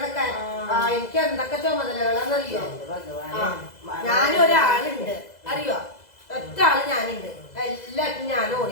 എനിക്ക് എന്തൊക്കെ ചുമതലകളാന്നറിയോ? ഞാനൊരാളുണ്ട് അറിയോ? ഒറ്റ ആള് ഞാനുണ്ട്. എല്ലാവർക്കും ഞാൻ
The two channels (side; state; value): right; late; 2.0 ms